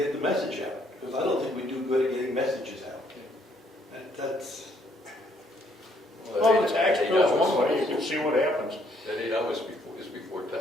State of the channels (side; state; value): both; normal; correlation 0.68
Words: the message out. Because I don't think we do good at getting messages out. That's, Well, the tax bill's one way, you can see what happens. That 8 hours is before